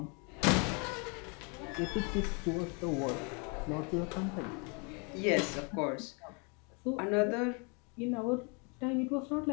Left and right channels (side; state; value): right; quieter; 34.1 dB